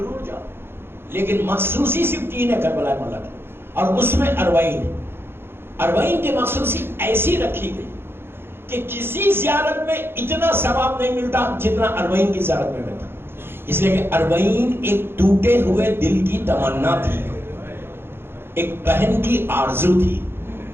جاؤ. لیکن مخصوصی صرف 3 ہے کربلا مولا کی، اور اس میں اربعین ہے. اربعین کی مخصوصی ایسی رکھی گئی کہ کسی زیارت میں اتنا ثواب نہیں ملتا جتنا اربعین کی زیارت میں ملتا. اس لیے کہ اربعین ایک ٹوٹے ہوئے دل کی تمنا تھی، ایک بہن کی آرزو تھی.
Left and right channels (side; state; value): left; late; 0.11 ms